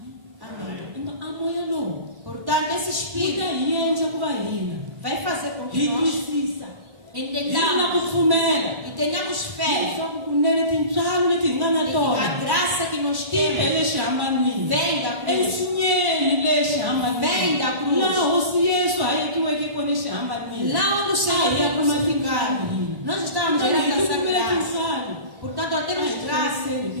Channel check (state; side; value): late; left; 1.1 ms